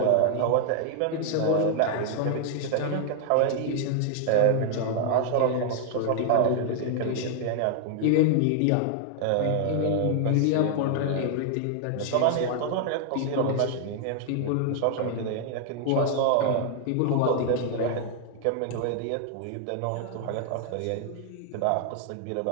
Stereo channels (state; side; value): different; both; correlation -0.01